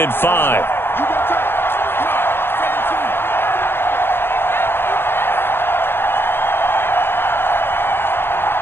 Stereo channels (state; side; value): late; right; 0.11 ms